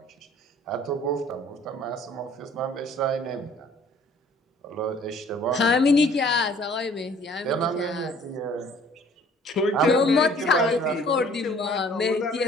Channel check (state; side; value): normal; both; correlation 0.55